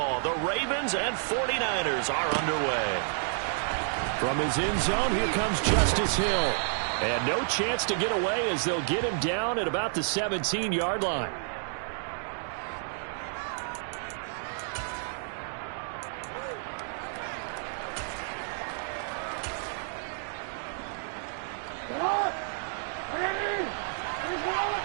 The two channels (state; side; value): silent; left; digital silence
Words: The Ravens and 49ers are underway. From his end zone, here comes Justice Hill. And no chance to get away as they'll get him down at about the 17-yard line.